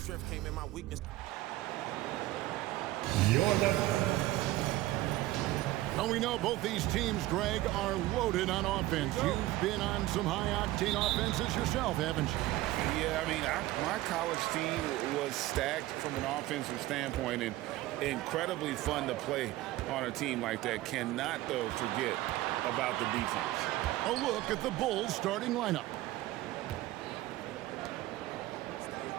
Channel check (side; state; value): left; quieter; 16.7 dB